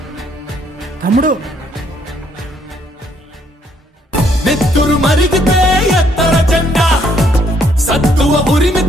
తమ్ముడు, నెత్తురు మరిగితే ఎత్తర జెండా, సత్తువ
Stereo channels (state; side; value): normal; both; correlation 0.68